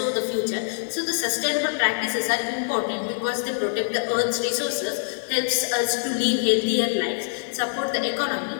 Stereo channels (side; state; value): right; silent; digital silence